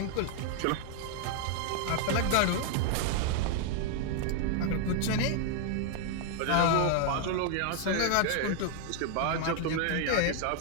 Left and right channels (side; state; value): both; different; correlation 0.00